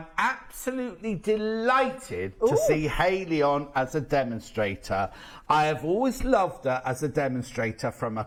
absolutely delighted to see Hayley on as a demonstrator. I have always loved her as a demonstrator from a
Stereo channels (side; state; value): both; identical; correlation 1.00